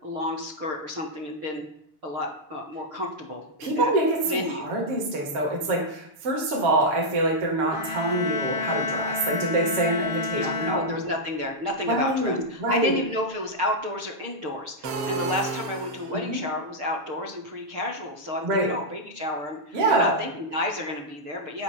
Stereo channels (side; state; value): left; late; 7.2 ms